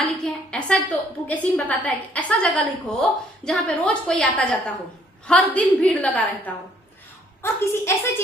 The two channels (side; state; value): both; normal; correlation 0.64